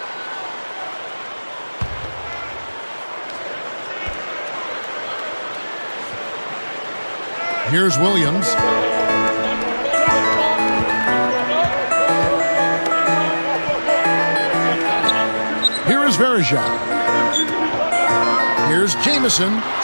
Here's Williams. Here is Varejao. Here's Jamison.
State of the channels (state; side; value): inverted; both; correlation -1.00